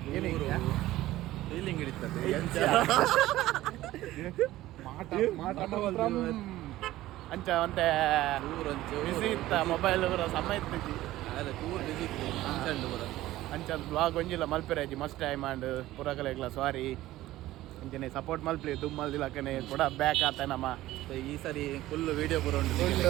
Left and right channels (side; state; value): left; quieter; 15.8 dB